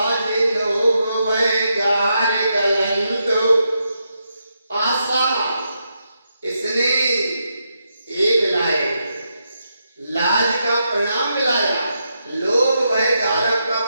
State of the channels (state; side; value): inverted; both; correlation -0.83